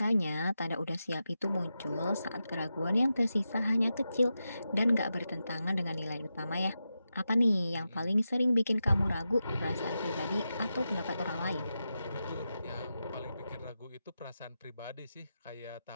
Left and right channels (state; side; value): inverted; both; correlation -0.90